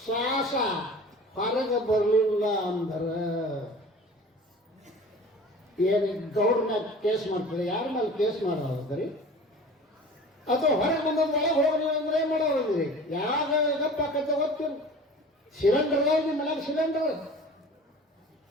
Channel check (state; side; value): normal; both; correlation 0.41